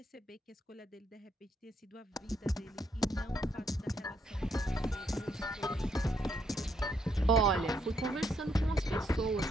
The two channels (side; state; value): both; normal; correlation 0.74